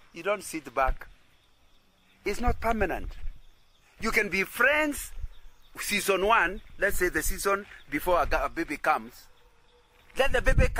You don't sit back. It's not permanent. You can be friends season 1, let's say the season before a baby comes. Then the baby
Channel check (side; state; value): both; identical; correlation 1.00